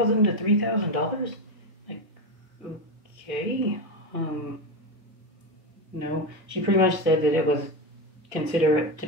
to $3,000. Like, okay, no. She pretty much said that it was considered to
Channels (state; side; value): normal; both; correlation 0.14